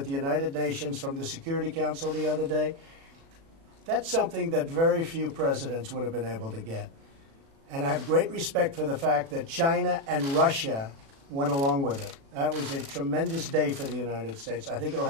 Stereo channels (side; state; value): left; late; 36 ms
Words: the United Nations from the Security Council the other day, that's something that very few presidents would have been able to get. And I have great respect for the fact that China and Russia went along with it. That was a tremendous day for the United States. I think it'll